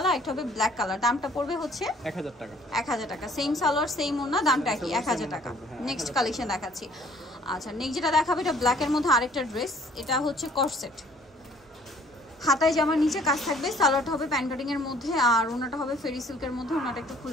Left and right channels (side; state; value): both; normal; correlation 0.57